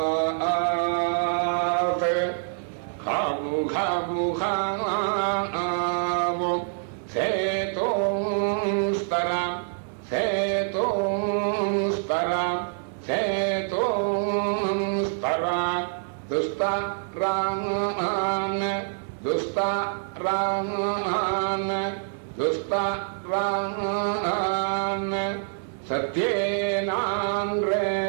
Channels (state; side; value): silent; left; 61 dB below the other